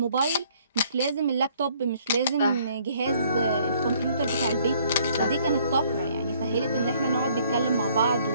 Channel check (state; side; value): inverted; both; correlation -0.62